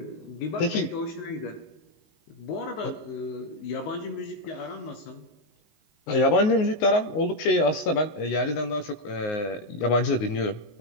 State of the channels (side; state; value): right; late; 19 ms